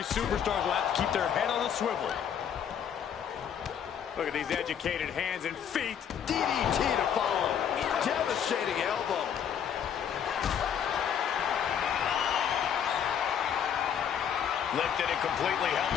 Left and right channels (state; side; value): quieter; right; 8.5 dB